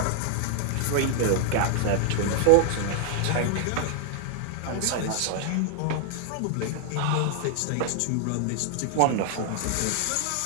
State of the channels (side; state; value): both; different; correlation 0.00